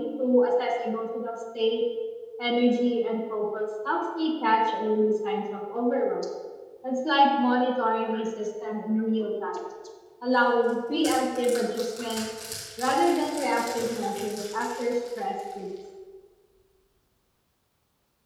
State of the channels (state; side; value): identical; both; correlation 1.00